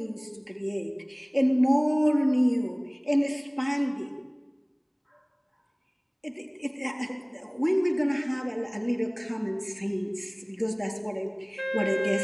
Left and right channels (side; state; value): both; identical; correlation 1.00